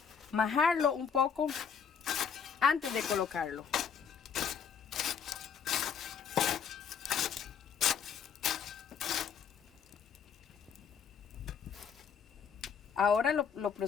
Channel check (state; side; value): quieter; right; 7.1 dB